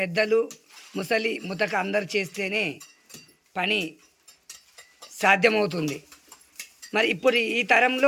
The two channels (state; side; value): identical; both; correlation 1.00